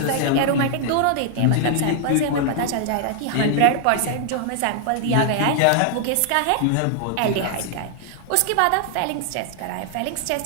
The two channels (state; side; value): different; both; correlation 0.00